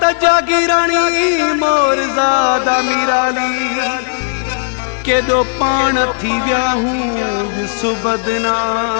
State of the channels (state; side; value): silent; right; digital silence